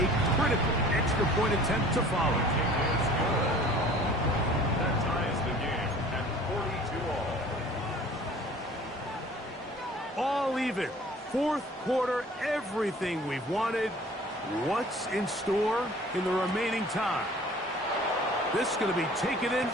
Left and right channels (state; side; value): normal; both; correlation 0.48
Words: critical extra point attempt to follow. It's good. That ties the game at 42 all. All even. Fourth quarter, everything we've wanted. What's in store in the remaining time? This is going to be taken in